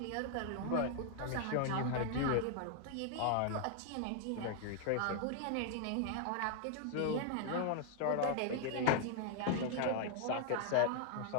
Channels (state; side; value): different; both; correlation 0.00